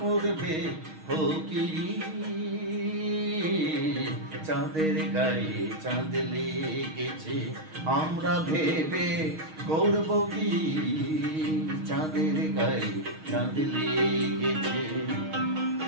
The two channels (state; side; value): late; left; 6.4 ms